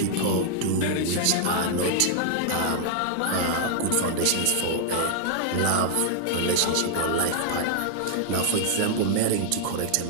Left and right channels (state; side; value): different; both; correlation -0.01